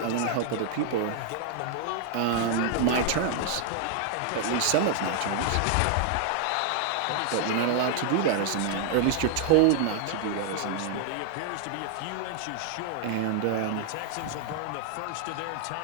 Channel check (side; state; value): both; different; correlation 0.00